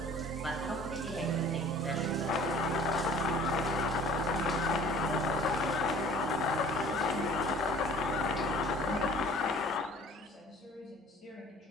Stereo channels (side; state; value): both; normal; correlation 0.49